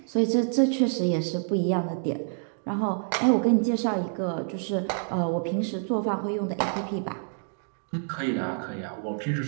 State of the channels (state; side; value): silent; left; 60 dB below the other